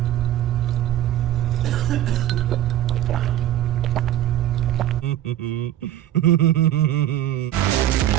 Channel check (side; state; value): left; quieter; 12.4 dB